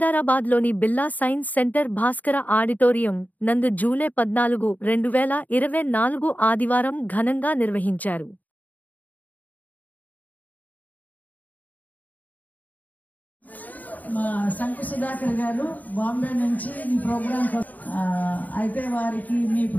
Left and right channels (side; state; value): right; late; 0.078 ms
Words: Birla science centre Bhaskara auditorium నందు జూలై 14, 2024 ఆదివారం ఘనంగా నిర్వహించారు. మా శంకు సుధాకర్ గారు బాంబే నుంచి ఈ ప్రోగ్రాం అయితే వారికి మీ